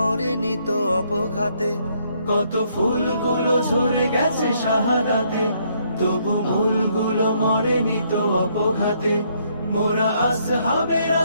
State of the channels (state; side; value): inverted; both; correlation -0.70